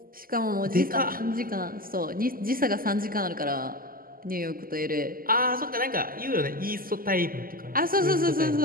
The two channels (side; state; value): left; late; 0.42 ms